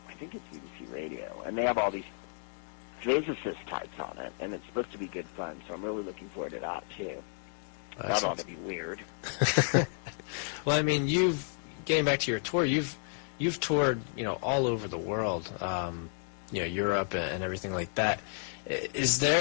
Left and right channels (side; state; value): right; silent; 56 dB below the other